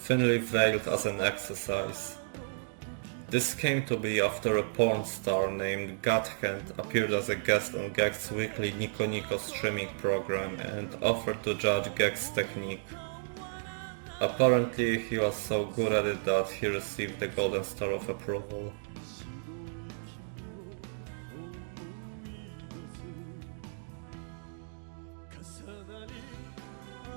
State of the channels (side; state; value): left; silent; digital silence